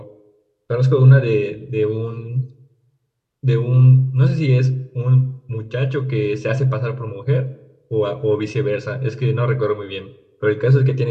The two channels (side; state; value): both; identical; correlation 1.00